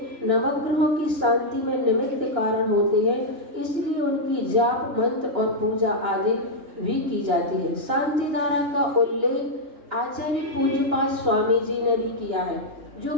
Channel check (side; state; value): left; late; 2.9 ms